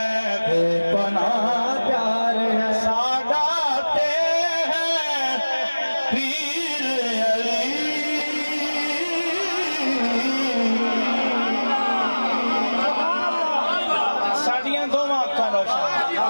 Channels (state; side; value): inverted; both; correlation -1.00